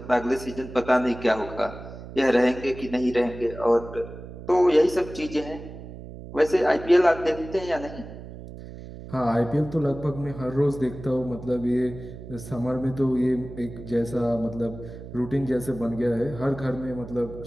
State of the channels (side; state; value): right; noise; hum, 13 dB below the sound